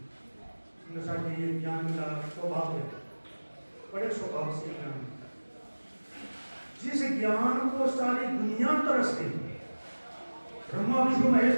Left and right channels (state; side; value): inverted; both; correlation -1.00